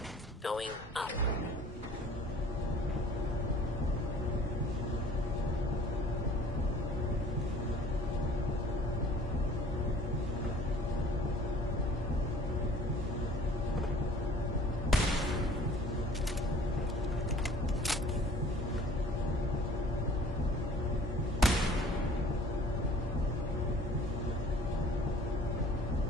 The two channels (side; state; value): both; normal; correlation 0.50